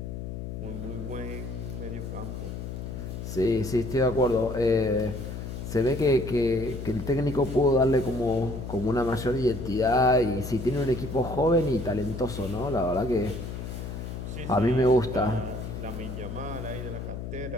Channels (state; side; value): noise; left; hum, 7 dB below the sound